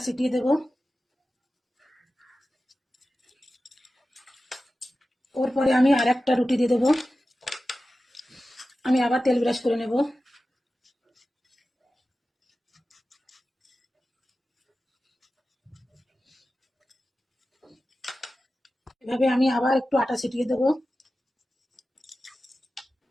ছিটিয়ে দেব। ওর পরে আমি আর একটা রুটি দিয়ে দেব। আমি আবার তেল ব্রাশ করে নেব। এভাবে আমি আবার একটু আটা ছিটিয়ে দেব।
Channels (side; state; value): both; normal; correlation 0.94